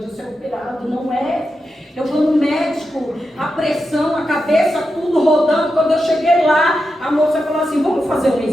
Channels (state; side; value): normal; both; correlation 0.88